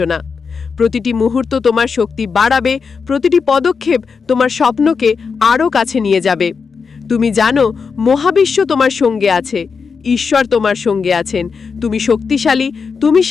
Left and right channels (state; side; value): quieter; right; 5.5 dB